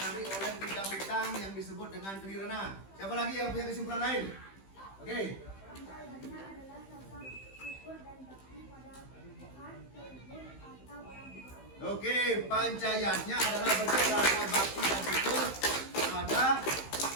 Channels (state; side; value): late; right; 15 ms